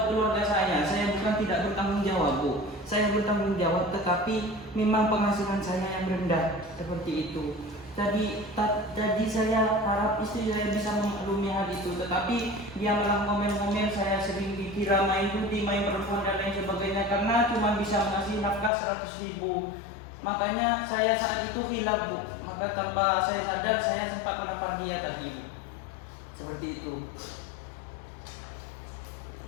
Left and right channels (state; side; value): drops out; right; at 18.7 s